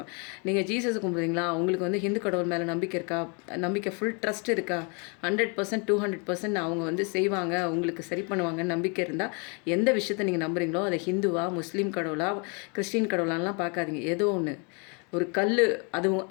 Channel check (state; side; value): quieter; right; 34.3 dB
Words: நீங்கள் ஜீசஸை கும்பிட்றீங்களா, உங்களுக்கு வந்து ஹிந்து கடவுள் மேலே நம்பிக்கை இருக்கா, நம்பிக்கை ஃபுல் ட்ரஸ்ட் இருக்கா, 100% 200% அவங்க வந்து செய்வாங்க, உங்களுக்கு சரி பண்ணுவாங்கன்னு நம்பிக்கை இருந்தால் எந்த விஷயத்தை நீங்கள் நம்புறீங்களோ அதை ஹிந்துவா முஸ்லீம் கடவுள் கடவுளா கிறிஸ்டின் கடவுளான்லாம் பார்க்காதீங்க. ஏதோ ஒன்று ஒரு கல்,